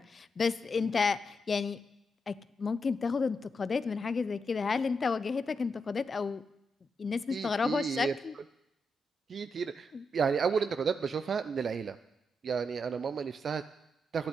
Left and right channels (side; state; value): both; normal; correlation 0.83